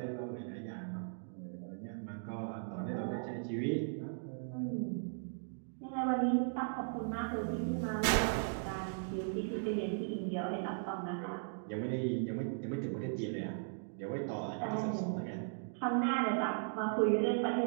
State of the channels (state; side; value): silent; left; digital silence